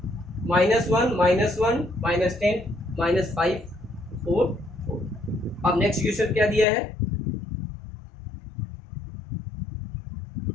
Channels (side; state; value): right; drops out; at 6.7 s